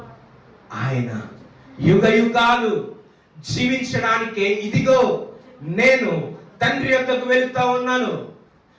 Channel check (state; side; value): identical; both; correlation 1.00